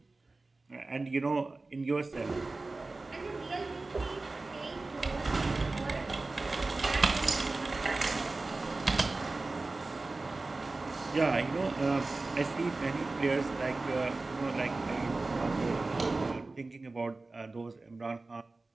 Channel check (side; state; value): left; quieter; 3.4 dB